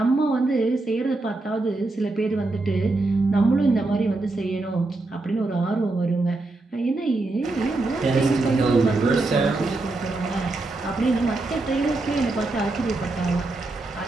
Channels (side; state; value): left; quieter; 3.1 dB